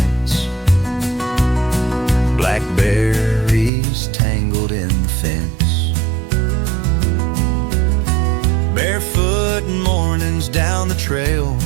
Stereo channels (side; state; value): left; drops out; at 3.7 s